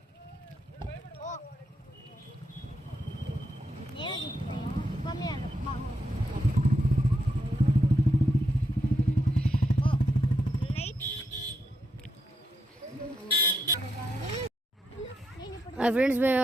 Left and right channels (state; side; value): normal; both; correlation 0.81